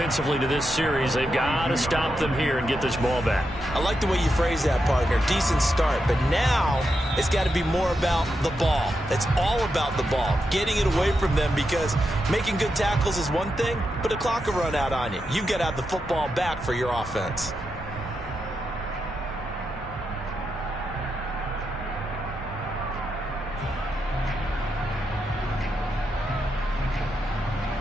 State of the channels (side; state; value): both; normal; correlation 0.86